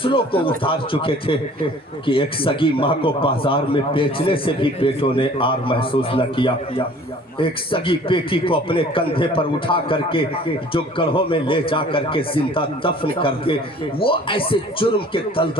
کو اتار چکے تھے کہ ایک سگی ماں کو بازار میں بیچنے سے بھی بیٹوں نے آر محسوس نہ کیا۔ ایک سگی بیٹی کو اپنے کندھے پر اٹھا کر کے جو گڑھوں میں لے جا کر کے زندہ دفن کر دے، وہ ایسے جرم کے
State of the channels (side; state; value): both; normal; correlation 0.50